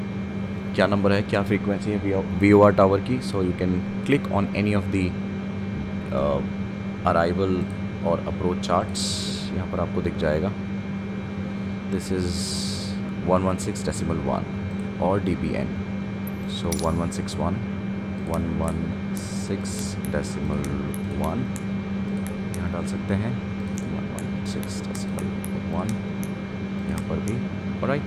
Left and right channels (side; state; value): both; identical; correlation 1.00